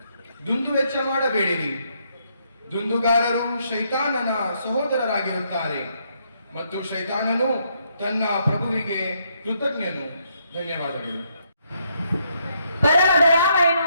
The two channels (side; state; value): both; inverted; correlation -0.75